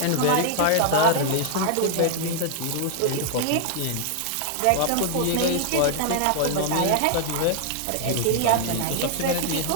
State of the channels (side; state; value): both; different; correlation 0.00